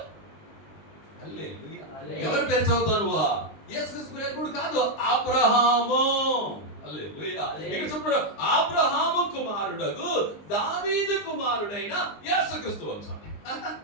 హల్లెలూయా. ఎవరి పేరు చదువుతాను? యేసుక్రీస్తు పేరు కాదు, అబ్రహాము. హల్లెలూయా. ఇక్కడ చెప్పాడు, అబ్రహాము కుమారుడగు దావీదు కుమారుడైన యేసుక్రీస్తు వంశం.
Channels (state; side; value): late; right; 19 ms